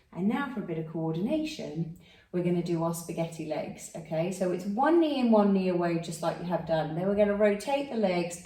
And now for a bit of coordination, we're going to do our spaghetti legs, okay? So it's one knee in, one knee away, just like you have done. Then we're going to rotate the legs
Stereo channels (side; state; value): both; identical; correlation 1.00